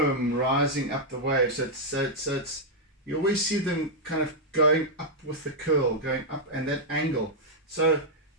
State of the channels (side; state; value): both; normal; correlation -0.04